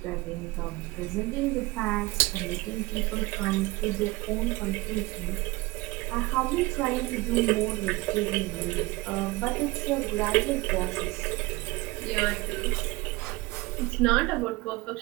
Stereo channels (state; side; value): quieter; left; 21.5 dB